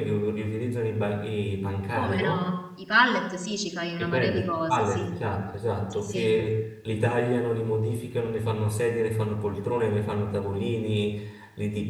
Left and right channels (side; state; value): both; identical; correlation 1.00